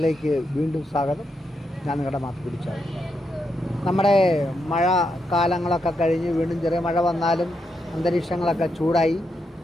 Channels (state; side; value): normal; both; correlation 0.82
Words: വീണ്ടും സ്വാഗതം. ഞാൻ നിങ്ങളുടെ മാത്ത് പിടിച്ചാൽ നമ്മുടെ മഴ കാലങ്ങളൊക്കെ കഴിഞ്ഞ് വീണ്ടും ചെറിയ മഴ വന്നാലും അന്തരീക്ഷങ്ങളൊക്കെ